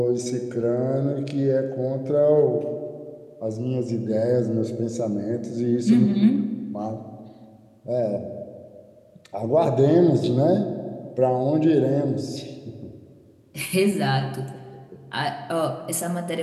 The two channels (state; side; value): identical; both; correlation 1.00